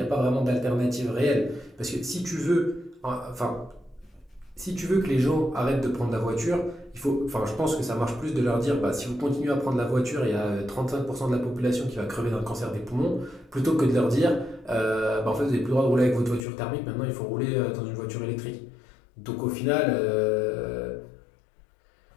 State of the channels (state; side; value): drops out; right; at 16.4 s